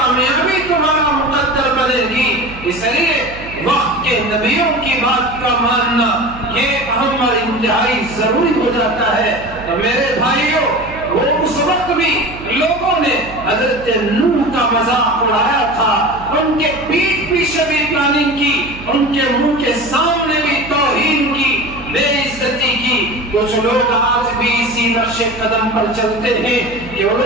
تمہارا مقدر بنے گی۔ اس لیے وقت کے نبیوں کی بات کا ماننا یہ اہم اور انتہائی ضروری ہو جاتا ہے۔ تو میرے بھائیوں، وہ اس وقت بھی لوگوں نے حضرت نوح کا مذاق اڑایا تھا، ان کے پیٹھ پیچھے بھی پلاننگ کی، ان کے منہ کے سامنے بھی توہین کی، بے عزتی کی۔ کچھ لوگ آج بھی اسی نقش قدم پر چلتے ہیں کہ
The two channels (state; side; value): noise; right; hum, 15 dB below the sound